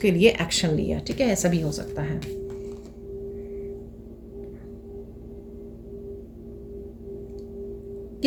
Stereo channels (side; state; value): both; identical; correlation 1.00